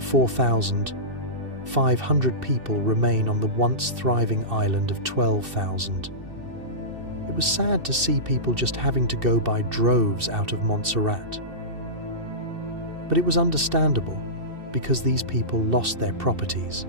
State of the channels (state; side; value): late; left; 2.7 ms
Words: 4,500 people remain on the once thriving island of 12,000. It was sad to see people just having to go by droves out of Montserrat. But it was understandable, because these people lost their properties.